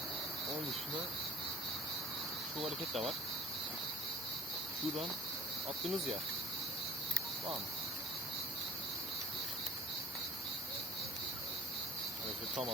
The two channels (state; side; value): normal; both; correlation 0.52